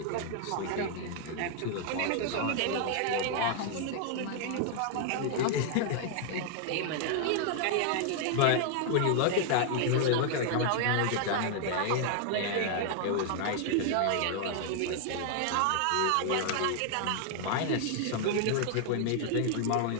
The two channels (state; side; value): different; both; correlation 0.00